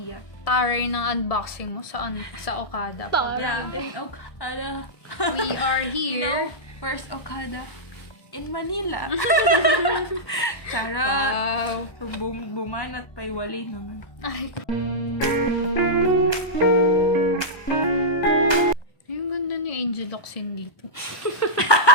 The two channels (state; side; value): late; right; 1.1 ms